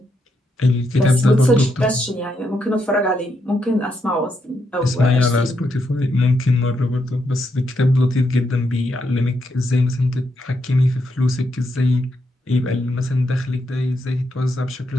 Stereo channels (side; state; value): both; normal; correlation 0.80